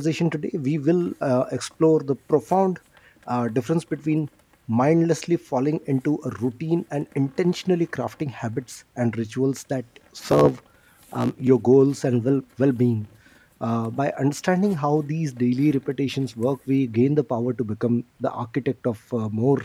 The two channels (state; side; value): identical; both; correlation 1.00